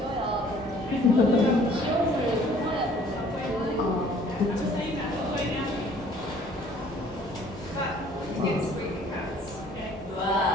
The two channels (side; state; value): both; normal; correlation 0.56